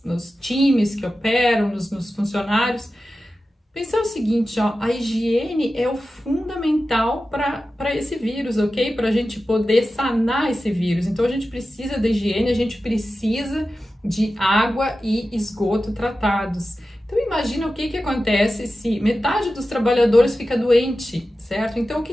Nos times que operam, nos funcionários. Pensar o seguinte, ó, a higiene é o fundamental para esse vírus, ok? Para a gente poder sanar esse vírus. Então a gente precisa da higiene, a gente precisa de água e esgoto tratados. Então imagina o que acontece se metade dos trabalhadores fica doente, certo? Então o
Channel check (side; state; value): both; normal; correlation 0.93